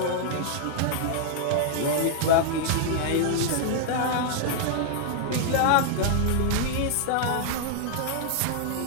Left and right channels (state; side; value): different; both; correlation -0.01